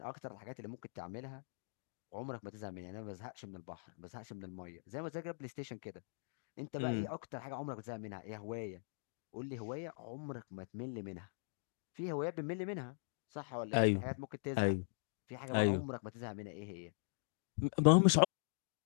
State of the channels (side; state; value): right; silent; digital silence